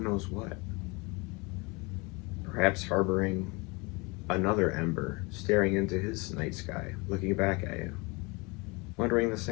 what. Perhaps harboring another ember, staring into his night sky, looking back at you, wondering the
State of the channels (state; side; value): quieter; right; 27.4 dB